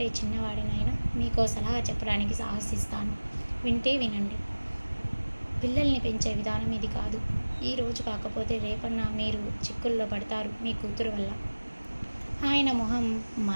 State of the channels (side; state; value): both; inverted; correlation -1.00